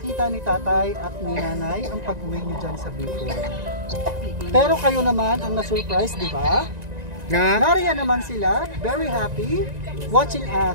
ni tatay at ni nanay ang pag-uwi niyo dyan sa Bicol. Pero kayo naman ang na-surprise, di ba? Nariyan naman sila, very happy, watching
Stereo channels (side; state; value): left; late; 1.9 ms